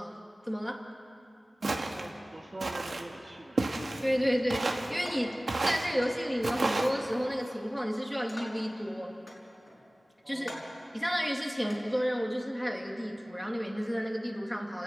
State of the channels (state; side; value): normal; both; correlation 0.98